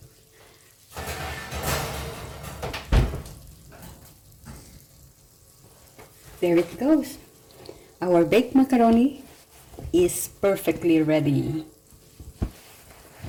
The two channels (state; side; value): identical; both; correlation 1.00